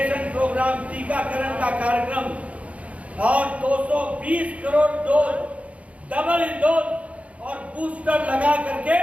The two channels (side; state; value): left; late; 0.065 ms